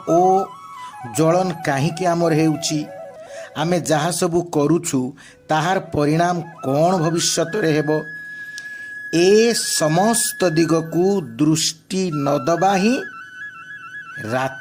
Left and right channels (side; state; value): both; identical; correlation 1.00